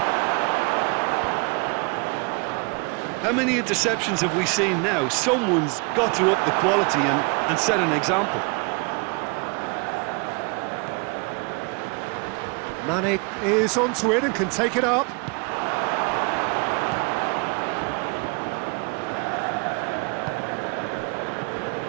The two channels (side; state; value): left; quieter; 32.1 dB